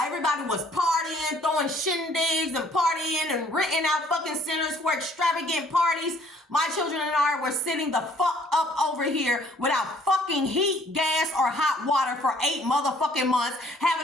everybody was partying, throwing shindigs and partying and renting out fucking centers for extravagant parties, my children and I were sitting the fuck up over here without fucking heat, gas, or hot water for 8 motherfucking months,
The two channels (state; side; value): normal; both; correlation 0.60